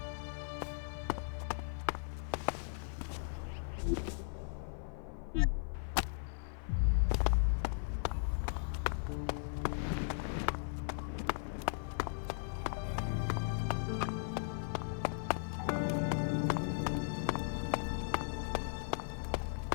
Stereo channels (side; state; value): right; silent; 53 dB below the other